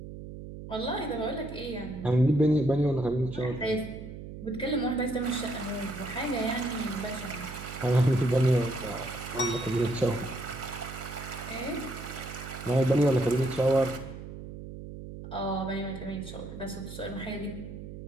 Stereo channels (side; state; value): right; noise; hum, 11 dB below the sound